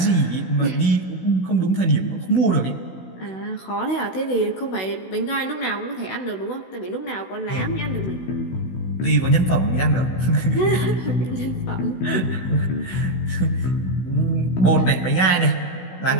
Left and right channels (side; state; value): right; late; 16 ms